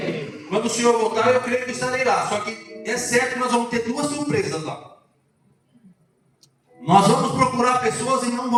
Quando o Senhor voltar, eu creio que estarei lá. Só que é certo que nós vamos ter duas surpresas lá. Nós vamos procurar pessoas e não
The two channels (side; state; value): both; identical; correlation 1.00